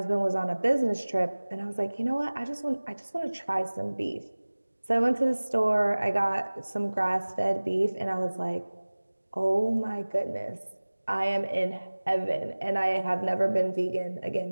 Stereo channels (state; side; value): inverted; both; correlation -1.00